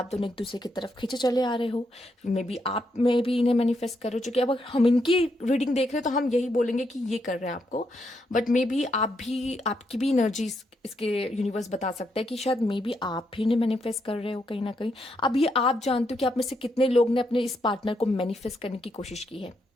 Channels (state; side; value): normal; both; correlation 0.79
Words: दोनों एक दूसरे की तरफ खींचे चले आ रहे हो, मे बी आप में भी इन्हें मैनिफेस्ट कर रहे हो, क्योंकि अब हम इनकी रीडिंग देख रहे हैं तो हम यही बोलेंगे कि ये कर रहे हैं आपको, बट मे बी आप भी, आपकी भी एनर्जी इसके यूनिवर्स बता सकता है कि शायद मे बी आप भी इन्हें मैनिफेस्ट कर रहे हो कहीं ना कहीं। अब ये आप जानते हो कि आप में से कितने लोग ने अपने इस पार्टनर को मैनिफेस्ट करने की कोशिश की है।